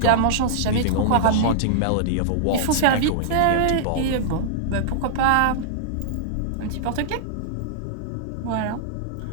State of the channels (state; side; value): different; both; correlation -0.02